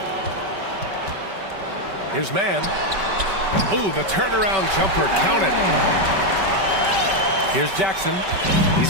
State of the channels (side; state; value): left; late; 5.2 ms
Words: Here's Mann. Ooh, the turnaround jumper, count it. Here's Jackson.